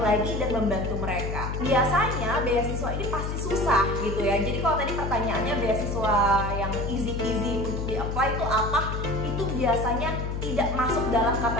dan membantu mereka. Biasanya beasiswa ini pasti susah gitu ya. Jadi kalau tadi pertanyaannya beasiswa yang easy peasy untuk di-apply itu apa? Itu biasanya tidak masuk dalam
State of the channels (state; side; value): noise; left; hum, 3 dB below the sound